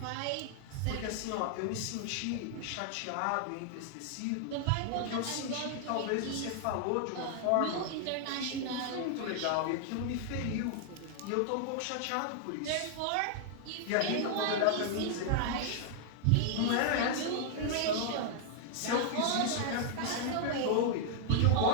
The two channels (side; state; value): both; different; correlation -0.01